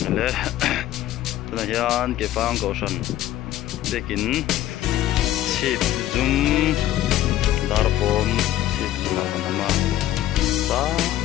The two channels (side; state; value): right; quieter; 13.4 dB